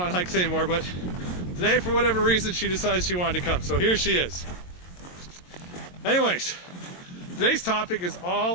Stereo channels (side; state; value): right; late; 22 ms